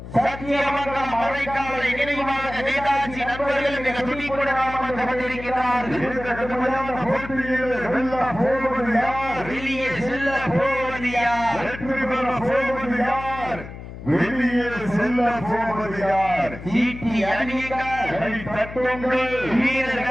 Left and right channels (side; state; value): left; noise; hum, 12 dB below the sound